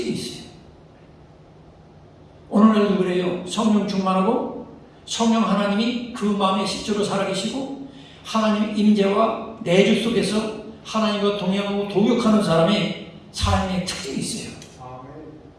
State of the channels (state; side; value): identical; both; correlation 1.00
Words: 있어요. 오늘날도 그래요. 성령 충만하고 성령 하나님이 그 마음에 실제로 살아계시고 하나님 임재와 내주 속에서 하나님과 동행하고 동역하는 사람의 삶의 특징이 있어요.